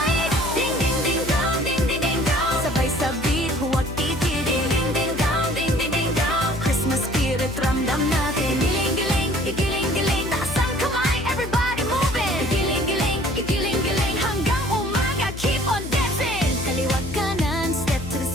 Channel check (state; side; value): noise; left; hum, 10 dB below the sound